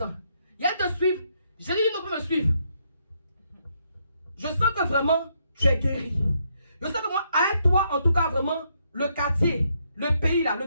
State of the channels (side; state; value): both; inverted; correlation -0.75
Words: Il y a de suivre. J'ai dit, non, peut me suivre. Je sens que vraiment, tu es guéri. Je sens que moi, avec toi, en tout cas, vraiment, le quartier, le pays, là, le